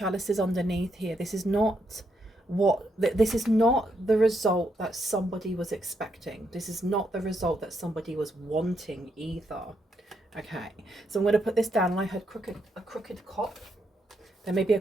underneath here. This is not the result that somebody was expecting. This is not the result that somebody was wanting either. Okay, so I'm going to put this down. And I heard a crooked cop. There may be a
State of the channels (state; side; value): normal; both; correlation 0.79